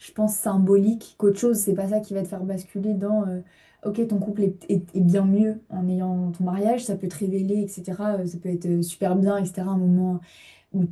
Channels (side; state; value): both; identical; correlation 1.00